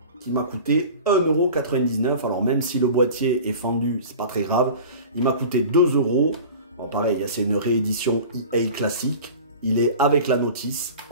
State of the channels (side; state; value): both; inverted; correlation -0.38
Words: qui m'a coûté 1,99 €. Alors même si le boîtier est fendu, c'est pas très grave, il m'a coûté 2 €. Bon, pareil, c'est une réédition EA classique, il est avec la notice